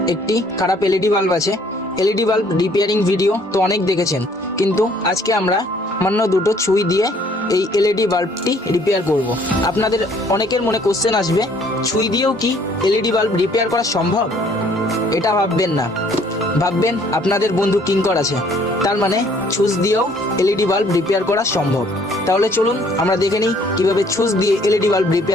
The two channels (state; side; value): normal; both; correlation 0.61